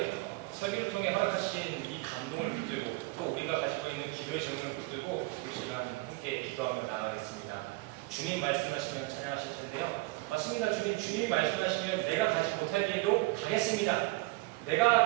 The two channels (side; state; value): left; quieter; 22.9 dB